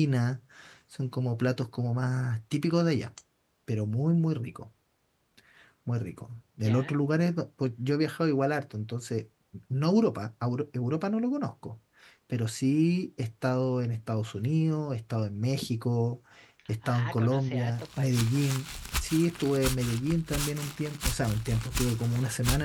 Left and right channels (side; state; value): both; identical; correlation 1.00